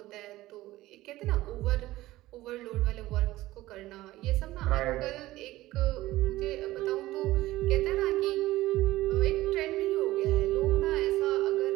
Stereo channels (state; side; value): quieter; left; 16.9 dB